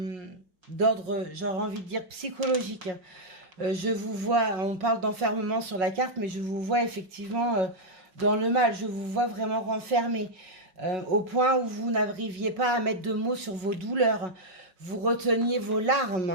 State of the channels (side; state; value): left; late; 5.4 ms